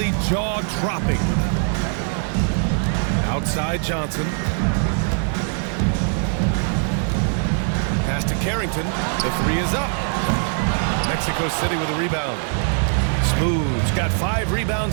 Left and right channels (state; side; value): silent; left; 60 dB below the other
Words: jaw-dropping. Outside Johnson. Pass to Carrington. The 3 is up. Mexico City with a rebound. Smooth's got 5